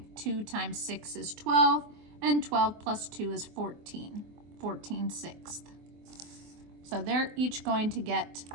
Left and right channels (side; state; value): left; late; 24 ms